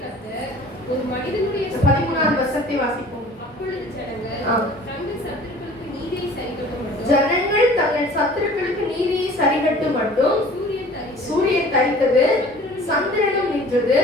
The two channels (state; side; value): normal; both; correlation 0.47